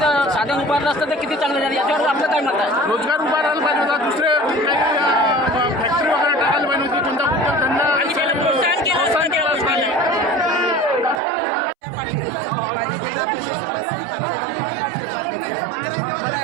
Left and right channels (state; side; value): drops out; left; at 11.2 s